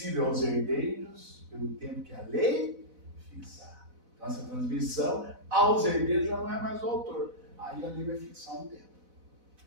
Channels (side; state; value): left; late; 4.0 ms